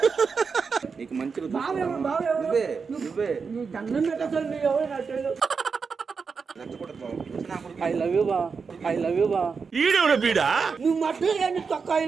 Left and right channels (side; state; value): left; quieter; 5.3 dB